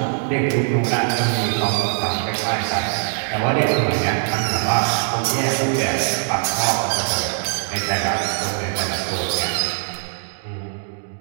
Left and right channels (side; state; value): left; silent; 65 dB below the other